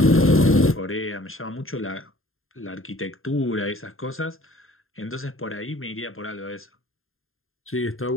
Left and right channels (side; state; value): right; late; 0.61 ms